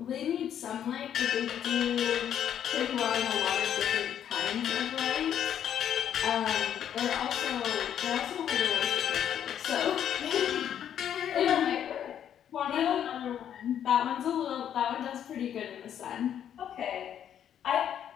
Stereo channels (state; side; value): quieter; right; 9.6 dB